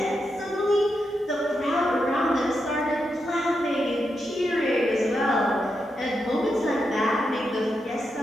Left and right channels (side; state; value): both; normal; correlation 0.85